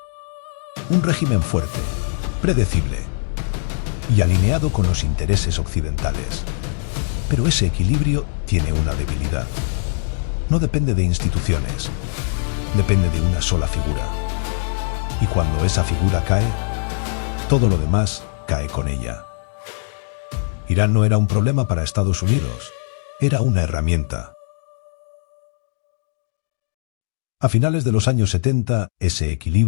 Un régimen fuerte, predecible y alineado con los intereses occidentales. Pero ese equilibrio tiene una debilidad. No depende de instituciones, depende de una sola figura. Y cuando esa figura cae, todo lo demás cae con ella. Irán no era un problema para Estados Unidos, era una herramienta. A finales de los años 70, ese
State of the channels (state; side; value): silent; right; digital silence